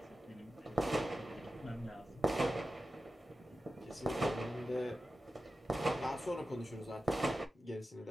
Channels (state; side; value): normal; both; correlation 0.93